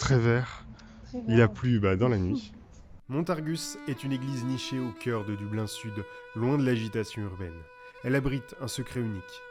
vert. Il a plu dans la nuit. Montargus est une église nichée au cœur de Dublin Sud, loin de l'agitation urbaine. Elle abrite un secret unique.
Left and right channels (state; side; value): identical; both; correlation 1.00